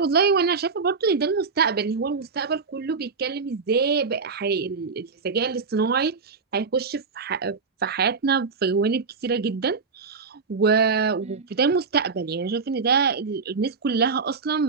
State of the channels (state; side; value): quieter; left; 4.9 dB